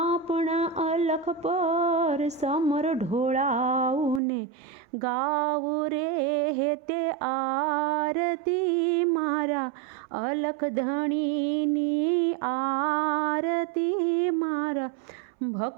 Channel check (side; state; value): left; drops out; at 4.2 s